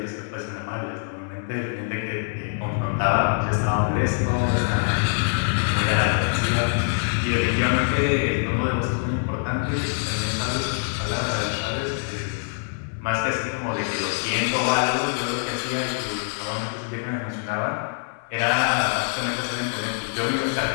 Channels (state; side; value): silent; right; 60 dB below the other